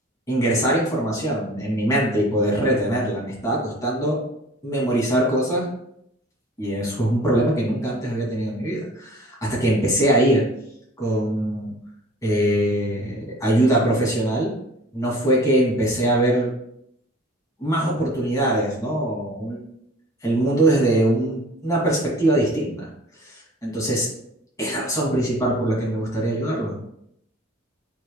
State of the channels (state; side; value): normal; both; correlation 0.46